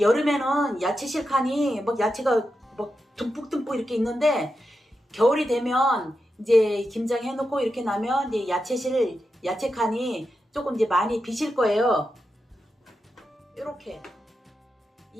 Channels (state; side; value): normal; both; correlation 0.88